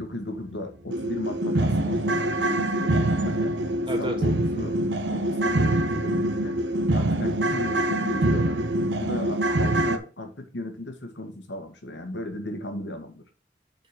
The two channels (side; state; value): both; normal; correlation 0.54